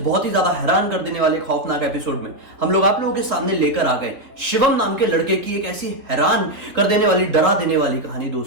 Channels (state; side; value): late; left; 3.6 ms